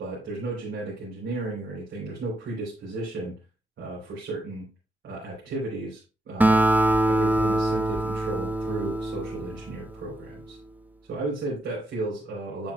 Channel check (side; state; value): both; normal; correlation 0.80